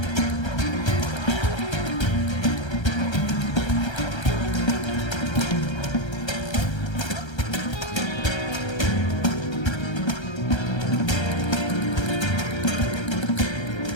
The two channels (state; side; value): late; right; 1.3 ms